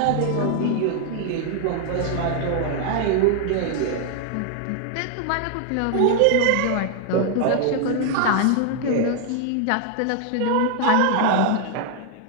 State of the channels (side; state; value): both; different; correlation 0.00